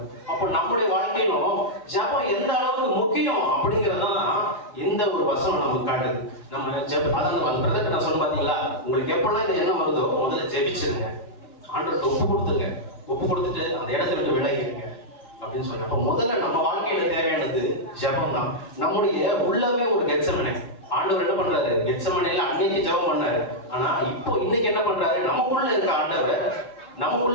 அப்போ நம்முடைய வாழ்க்கையிலும் ஜெபம் எந்த அளவுக்கு முக்கியம் அப்படிங்கறதான் இந்த ஒரு வசனம் நமக்கு காட்டுது. நம்ம அதான் பிரதர் நான் சொல்ல பாத்தீங்களா, உங்களுக்கு எப்பெல்லாம் இந்த எண்ணம் வருதோ முதல்ல ஜெபிச்சிருங்க, ஆண்டவருக்கு ஒப்பு கொடுத்துட்டு அந்த இடத்துல விட்டு விலகிடுங்க அப்படின்னு சொன்னேன். அப்போ முதல்ல நம்ம வாழ்க்கையில தேவையானது ஜெபம் தான். நம்முடைய உள்ளவே ஒரு கெத்செமனே. ஆண்டவர் என்ன பண்றாரு, கெத்செமனேல அன்னைக்கு ஜெபம் பண்ணாரு. ஆனா இப்போ இன்னைக்கு என்ன பண்றாரு, நமக்குள்ள இருக்க ஆண்டவர்,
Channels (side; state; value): right; late; 4.5 ms